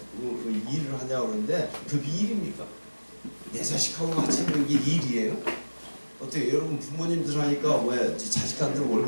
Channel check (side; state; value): both; inverted; correlation -1.00